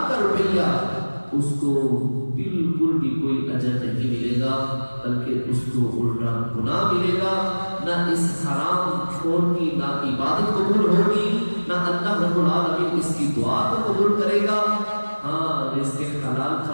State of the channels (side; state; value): both; inverted; correlation -1.00